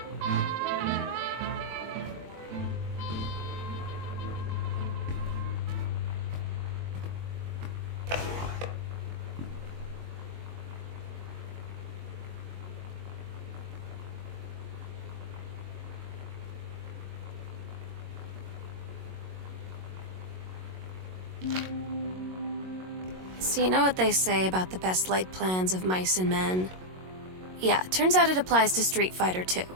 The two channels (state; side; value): late; left; 22 ms